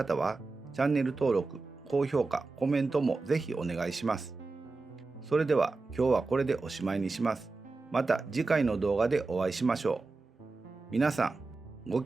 は、チャンネル登録、高評価、コメントもぜひお願いします。それでは今日はこれでおしまいにします。また次回の動画でお会いしましょう。皆さん、ご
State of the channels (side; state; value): left; quieter; 3.7 dB